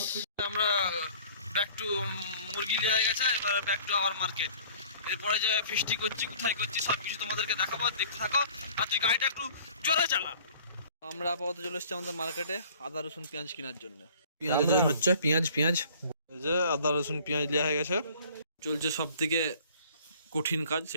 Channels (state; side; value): inverted; both; correlation -0.51